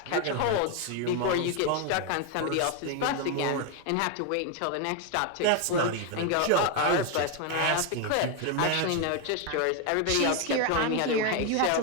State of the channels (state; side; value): different; both; correlation 0.01